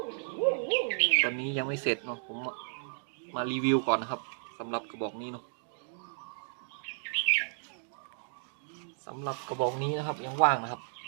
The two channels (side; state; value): left; silent; digital silence